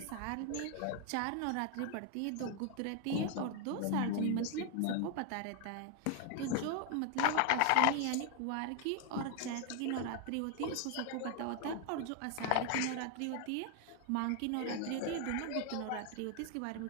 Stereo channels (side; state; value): both; different; correlation 0.00